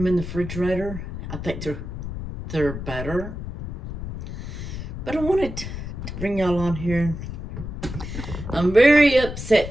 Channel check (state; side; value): noise; left; rumble, 7 dB below the sound